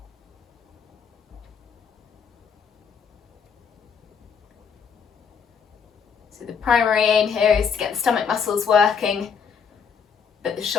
So the primary aim here is to get the stomach muscles working, but the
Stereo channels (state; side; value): quieter; right; 6.5 dB